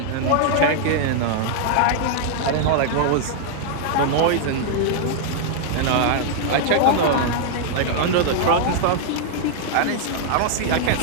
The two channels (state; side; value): different; both; correlation -0.01